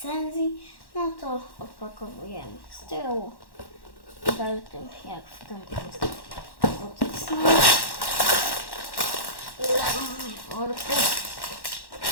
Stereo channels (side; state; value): right; late; 1.1 ms